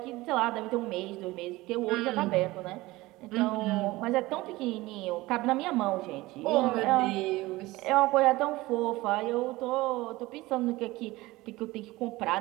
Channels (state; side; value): quieter; left; 19.6 dB